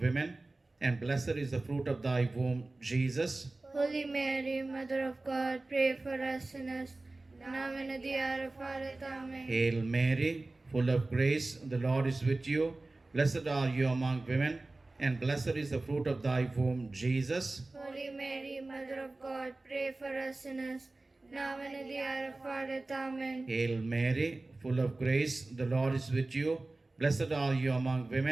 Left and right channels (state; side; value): quieter; left; 3.1 dB